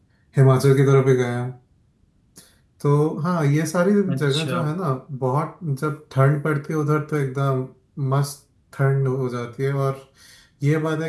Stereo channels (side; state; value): both; identical; correlation 1.00